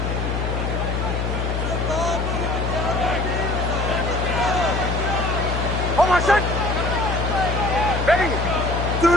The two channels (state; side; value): noise; left; hum, 1 dB below the sound